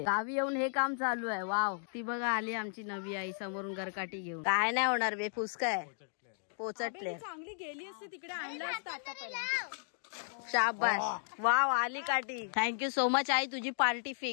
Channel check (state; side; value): silent; right; digital silence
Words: गावी येऊन हे काम चालू आहे. वाव, ती बघा आली आमची नवी आई समोरून गरकाठी घेऊन. काय नाही होणार बे, फुसकाय पोचटले. चांगली गेली असते तिकडे, आणलं असतं आता पहिला. शाबास, वाव आली काठी. थँक्यू सो मच आई, तुझी पार्टी